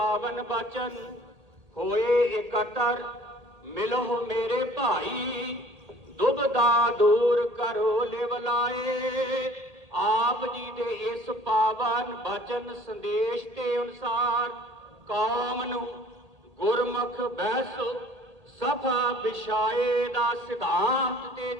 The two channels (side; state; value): left; late; 1.8 ms